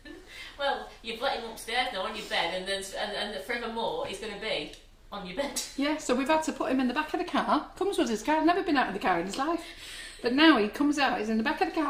Well, you've let him upstairs now on your bed, and then and forevermore he's going to be on your bed. Yeah, so we've had to put him in the back of the car. Comes with his car, never been out of the car in his life. But now he comes out, he's in the back of the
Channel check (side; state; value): both; identical; correlation 1.00